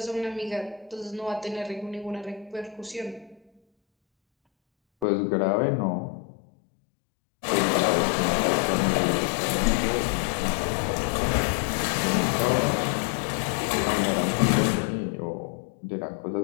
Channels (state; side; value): drops out; right; at 5.1 s